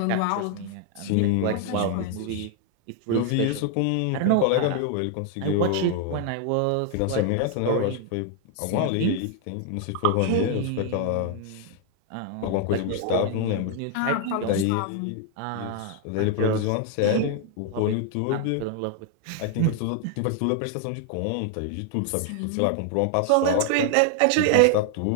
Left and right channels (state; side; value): different; both; correlation 0.00